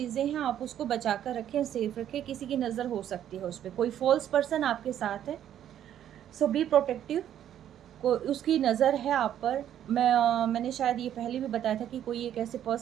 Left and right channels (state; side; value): quieter; left; 10.6 dB